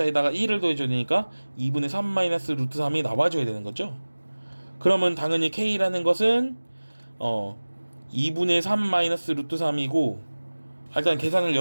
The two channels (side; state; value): both; inverted; correlation -1.00